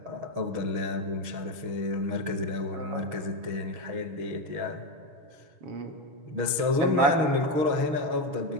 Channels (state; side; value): late; left; 6.3 ms